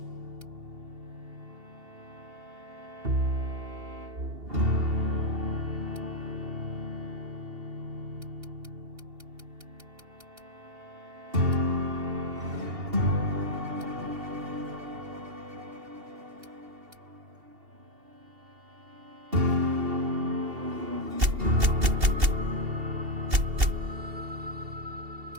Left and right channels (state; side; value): late; left; 2.7 ms